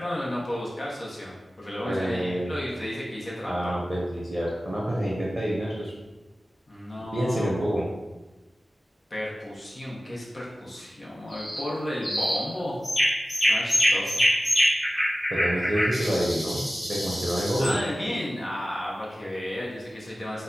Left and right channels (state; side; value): normal; both; correlation 0.95